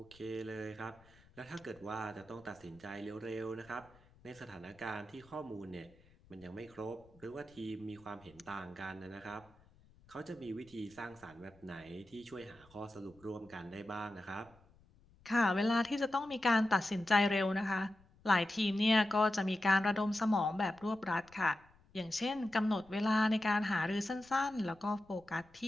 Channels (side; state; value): left; noise; rumble, 28 dB below the sound